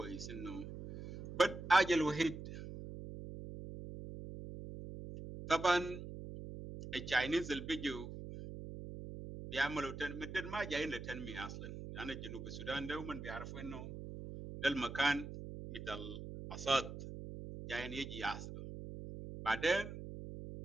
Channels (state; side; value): noise; right; hum, 9 dB below the sound